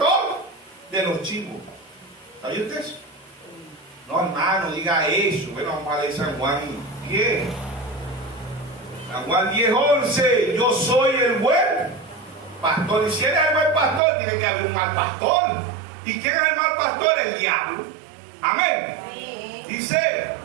de los chivos. ¿Sabía usted eso? No, hermano, diga eso. Bueno, vamos a leer San Juan 10. San Juan 10:11. Yo soy el buen pastor. Y si eres el buen pastor, tiene que haber un mal pastor. ¿Y quién es el mal pastor? El diablo. Amén. Dice,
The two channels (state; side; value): drops out; left; at 14.0 s